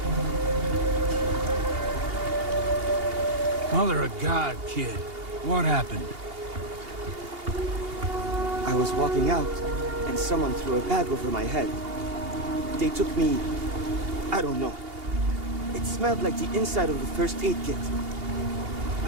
Mother of God, kid. What happened? I was walking out, and someone threw a bag over my head. They took me... I don't know. It smelled like the inside of the first aid kit.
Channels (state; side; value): late; left; 2.8 ms